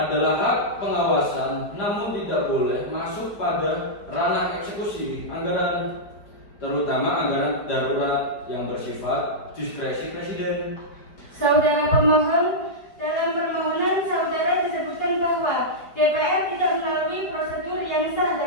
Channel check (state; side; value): late; right; 4.6 ms